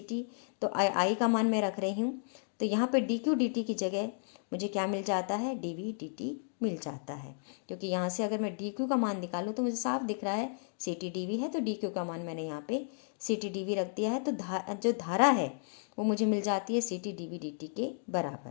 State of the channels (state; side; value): silent; right; digital silence